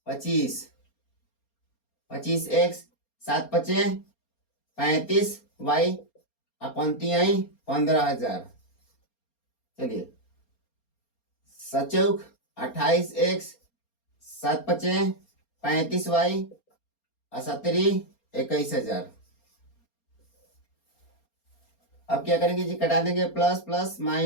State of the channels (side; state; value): right; late; 4.3 ms